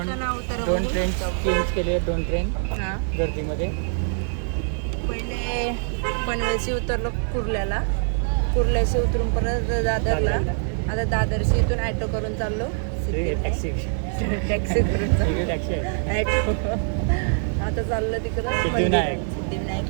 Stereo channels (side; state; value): left; silent; 63 dB below the other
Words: उतारा 2 ट्रेन चेंज केले. 2 ट्रेन हां गर्दीमध्ये. पहिले पनवेलशी उतरलो कुर्ल्याशी उतरून परत दादरला. आता दादरशी इथून ॲटो करून चाललो टॅक्सी करून चाललो ॲटो. आता चाललो तिकडं सिद्धिविनायक